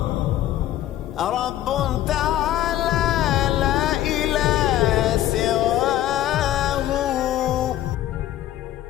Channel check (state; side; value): quieter; right; 13.1 dB